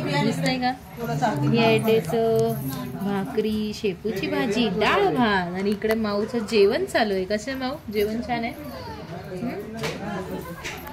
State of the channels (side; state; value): both; identical; correlation 1.00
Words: दिसतंय का? ही आहे ढेसं, भाकरी, शेपूची भाजी, डाळ भात आणि इकडे माऊचं जेवण चालू आहे. कसं माऊ जेवण छान आहे?